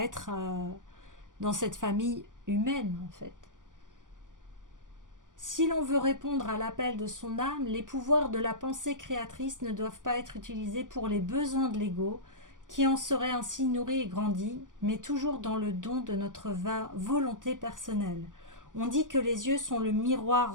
être dans cette famille humaine, en fait. Si l'on veut répondre à l'appel de son âme, les pouvoirs de la pensée créatrice ne doivent pas être utilisés pour les besoins de l'ego, qui en serait ainsi nourri et grandi, mais toujours dans le don de notre volonté personnelle. On dit que les yeux sont le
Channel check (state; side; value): late; left; 0.88 ms